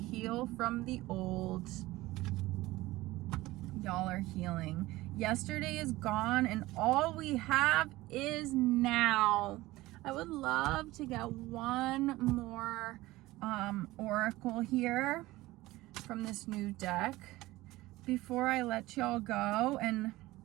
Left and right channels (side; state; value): left; quieter; 18.5 dB